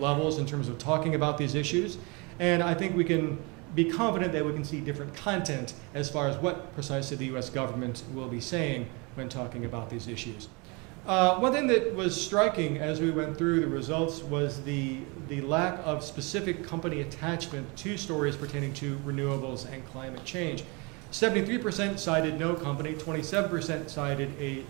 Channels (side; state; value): left; quieter; 29.2 dB